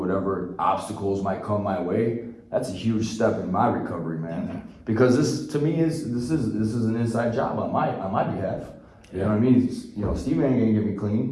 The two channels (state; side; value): identical; both; correlation 1.00